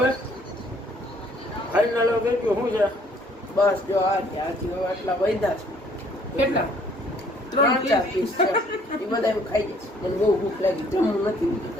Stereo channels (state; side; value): normal; both; correlation 0.61